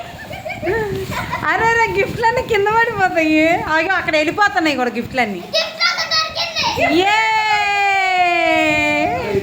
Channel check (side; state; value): both; identical; correlation 1.00